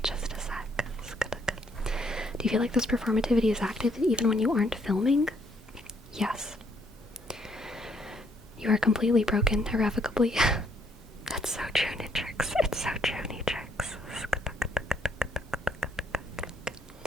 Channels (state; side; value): normal; both; correlation 0.69